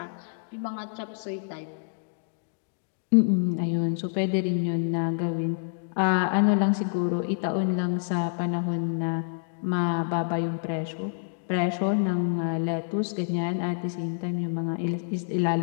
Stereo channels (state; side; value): silent; right; digital silence